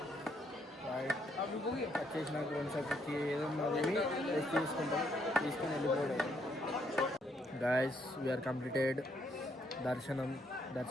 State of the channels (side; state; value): both; normal; correlation 0.73